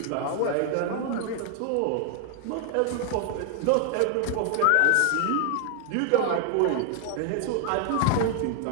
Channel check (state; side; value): different; both; correlation 0.00